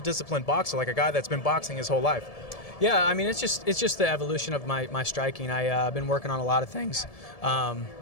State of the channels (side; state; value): right; late; 1.7 ms